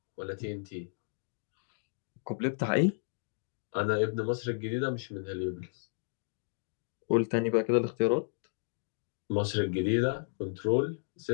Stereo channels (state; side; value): silent; right; digital silence